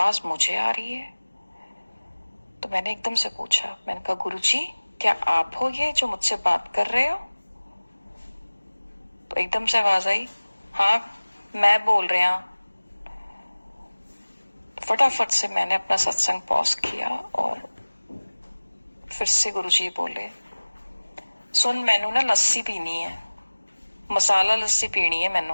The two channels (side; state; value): both; inverted; correlation -1.00